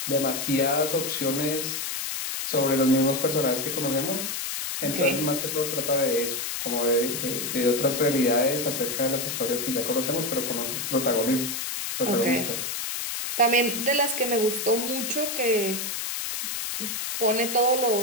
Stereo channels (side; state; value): left; noise; hiss, 3 dB below the sound